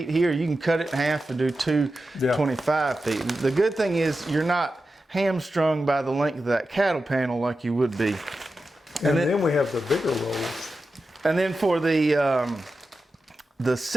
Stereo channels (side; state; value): both; normal; correlation 0.91